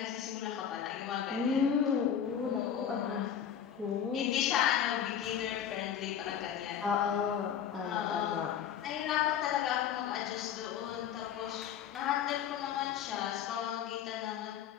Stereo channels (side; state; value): right; quieter; 8.9 dB